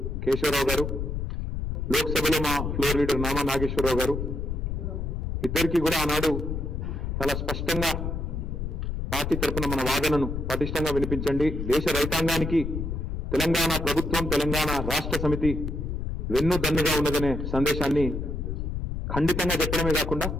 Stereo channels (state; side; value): noise; left; rumble, 3 dB below the sound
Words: కేశవరావు గారు, లోక్సభలో మా ఫ్లోర్ లీడర్ నామా నాగేశ్వరరావు గారు ఇద్దరికీ కూడా ఆనాడు చాలా స్పష్టంగా పార్టీ తరఫున మన వాదనను పటిష్టంగా వినిపించండి, దేశ రైతాంగానికి తెలంగాణ ప్రభుత్వం తెలంగాణ రాష్ట్ర సమితి వెన్నుదన్నుగా ఉన్నదనే సందేశాన్ని ఖండితంగా చెప్పడమే కాకుండా